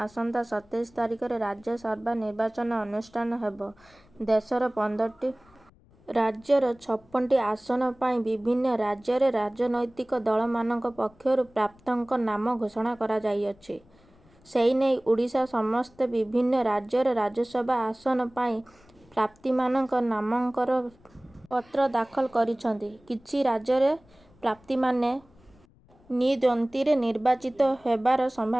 ଆସନ୍ତା 27 ତାରିଖରେ ରାଜ୍ୟସଭା ନିର୍ବାଚନ ଅନୁଷ୍ଠିତ ହେବ। ଦେଶର 15ଟି ରାଜ୍ୟର 56ଟି ଆସନ ପାଇଁ ବିଭିନ୍ନ ରାଜ୍ୟରେ ରାଜନୈତିକ ଦଳମାନଙ୍କ ପକ୍ଷରୁ ପ୍ରାର୍ଥୀଙ୍କ ନାମ ଘୋଷଣା କରାଯାଇଅଛି। ସେନେଇ ଓଡ଼ିଶା ସମେତ ବିଭିନ୍ନ ରାଜ୍ୟର ରାଜ୍ୟସଭା ଆସନ ପାଇଁ ପ୍ରାର୍ଥୀମାନେ ନାମାଙ୍କନ ପତ୍ର ଦାଖଲ କରିଛନ୍ତି। କିଛି ରାଜ୍ୟରେ ପ୍ରାର୍ଥୀମାନେ ନିର୍ଦ୍ୱନ୍ଦ୍ୱରେ ନିର୍ବାଚିତ ହେବାର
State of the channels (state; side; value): noise; left; rumble, 29 dB below the sound